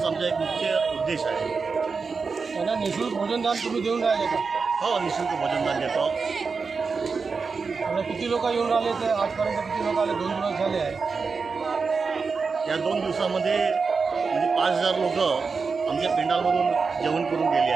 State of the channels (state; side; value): quieter; left; 4.9 dB